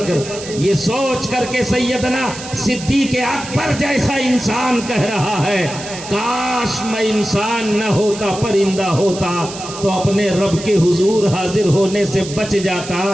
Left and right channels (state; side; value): noise; right; hiss, 12 dB below the sound